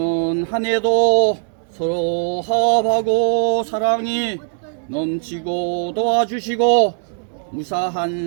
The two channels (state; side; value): silent; left; digital silence